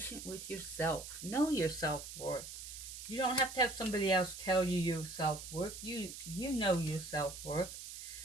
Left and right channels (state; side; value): noise; right; hiss, 10 dB below the sound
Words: with yourself. Know your self-worth. You don't have to have somebody else tell you your self-worth. You know your self-worth.